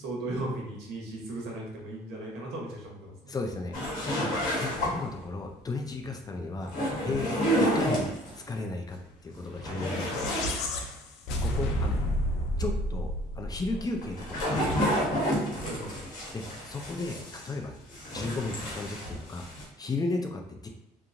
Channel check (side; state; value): both; normal; correlation 0.55